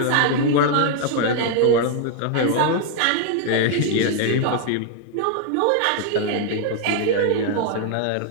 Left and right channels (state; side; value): different; both; correlation 0.00